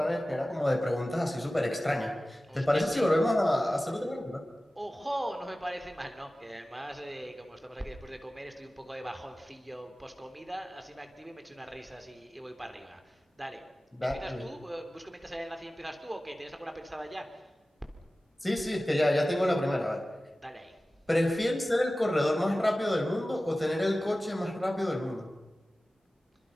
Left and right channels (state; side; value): normal; both; correlation 0.96